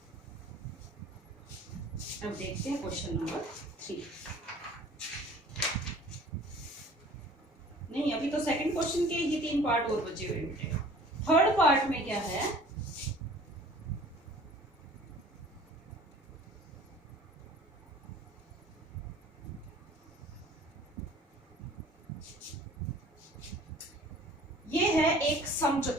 अब देखते हैं क्वेश्चन नंबर 3। नहीं, अभी तो सेकंड क्वेश्चन के ही 3 पार्ट और बचे हुए हैं। थर्ड पार्ट में क्या है, ये है एक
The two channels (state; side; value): normal; both; correlation 0.49